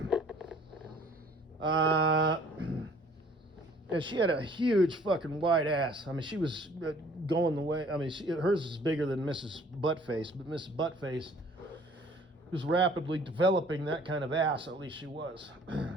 And she had a huge fucking white ass. I mean, she was going the way. I mean, hers is bigger than Mrs. Buttface, but Mrs. Buttface was rapidly developing that kind of ass. At least she was,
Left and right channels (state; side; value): normal; both; correlation 0.55